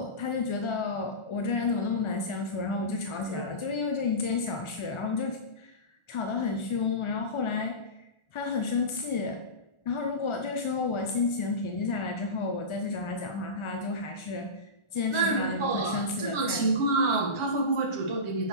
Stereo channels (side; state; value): right; late; 1.4 ms